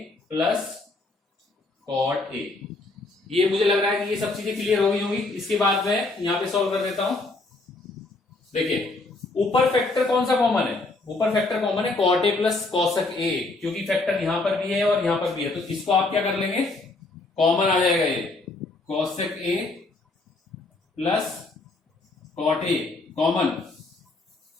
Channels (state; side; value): quieter; right; 3.2 dB